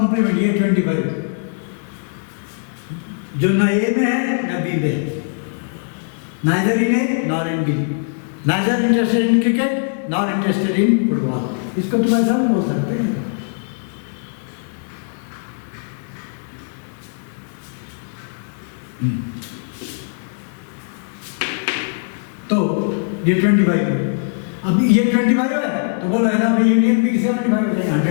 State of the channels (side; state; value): right; silent; digital silence